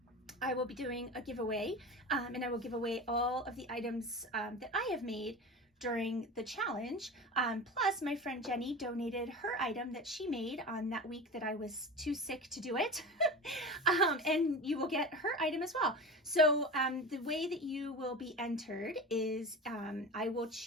I will be doing a giveaway, and I will give away all of the items that I have made during the challenge. Plus, my friend Jenny donated her item that she made on that week that I was too sick to do it. And you will get her item as well. So the way that you will be entered is I will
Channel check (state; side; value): normal; both; correlation 0.30